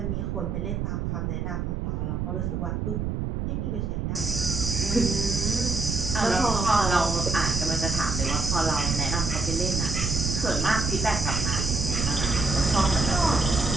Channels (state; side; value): noise; right; rumble, 2 dB below the sound